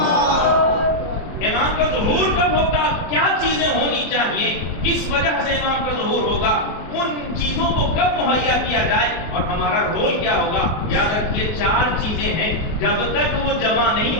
امام کا ظہور کب ہوگا؟ کیا چیزیں ہونی چاہیے؟ کس وجہ سے امام کا ظہور ہوگا؟ ان چیزوں کو کب مہیا کیا جائے اور ہمارا رول کیا ہوگا؟ یاد رکھیے 4 چیزیں ہیں، جب تک وہ جمع نہیں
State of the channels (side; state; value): right; late; 24 ms